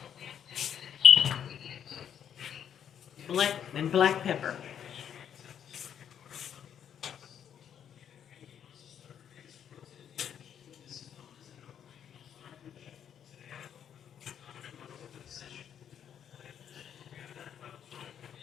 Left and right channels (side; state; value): right; quieter; 9.0 dB